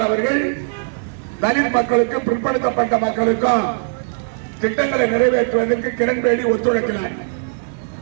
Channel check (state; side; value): silent; left; digital silence